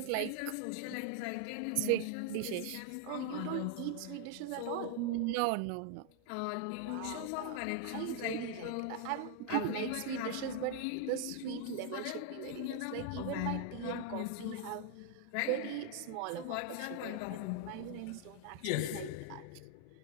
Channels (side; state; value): both; different; correlation 0.00